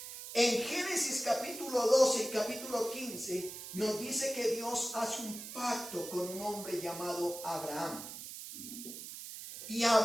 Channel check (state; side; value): noise; right; hiss, 10 dB below the sound